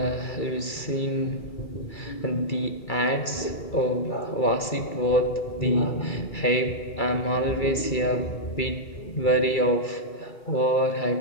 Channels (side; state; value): right; late; 2.3 ms